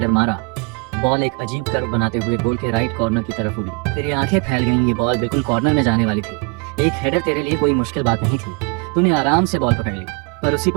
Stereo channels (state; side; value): quieter; left; 33.1 dB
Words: मारा। बॉल एक अजीब कर्व बनाते हुए गोल के राइट कॉर्नर की तरफ उड़ी। तेरी आंखें फैल गईं, ये बॉल बिल्कुल कॉर्नर में जाने वाली थी। एक हेडर तेरे लिए कोई मुश्किल बात नहीं थी। तूने आराम से बॉल पकड़ ली, पर उसी